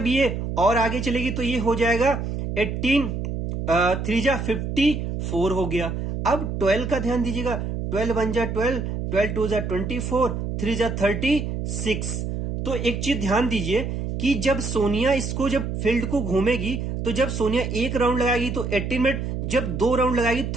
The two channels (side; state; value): right; noise; hum, 3 dB below the sound